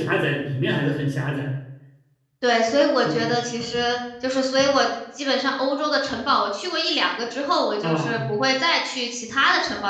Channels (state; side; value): identical; both; correlation 1.00